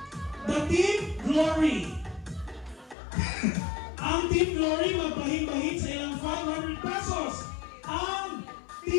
the Team Glory. Ang Team Glory magbahin-bahin sa ilang 500 pesos. Ang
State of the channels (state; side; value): drops out; right; at 3.0 s